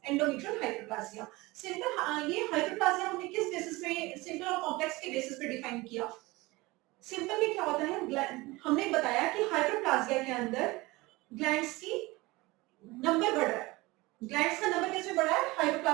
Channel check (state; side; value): quieter; left; 21.8 dB